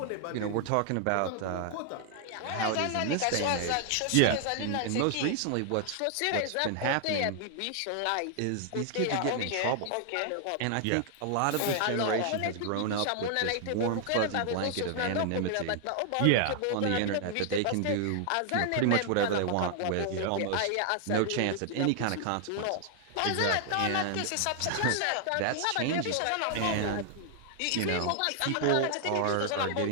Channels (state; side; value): different; both; correlation 0.00